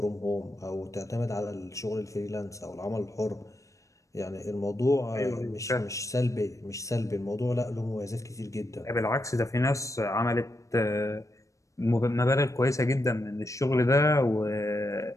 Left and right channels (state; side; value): late; right; 0.15 ms